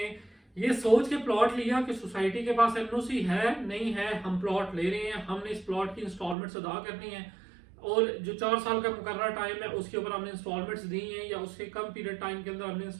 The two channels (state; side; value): drops out; left; at 6.4 s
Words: ये सोच के प्लॉट लिया कि सोसाइटी के पास एनओसी है नहीं है, हम प्लॉट ले रहे हैं, हमने इस प्लॉट की इंस्टॉलमेंट्स अदा करनी है, और जो 4 साल का मुकर्रर टाइम है उसके ऊपर हमने इंस्टॉलमेंट्स दी हैं या उससे कम पीरियड टाइम के अंदर हमने